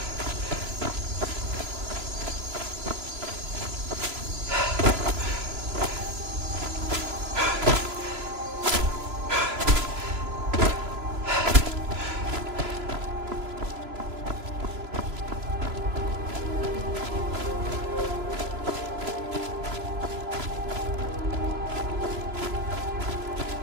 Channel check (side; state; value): left; late; 3.0 ms